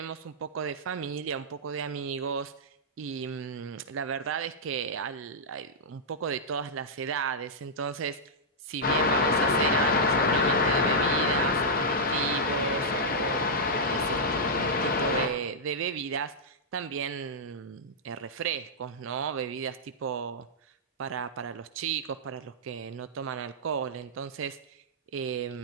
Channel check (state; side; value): normal; both; correlation -0.09